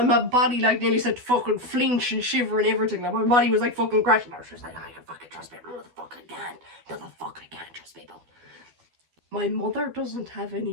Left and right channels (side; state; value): left; late; 12 ms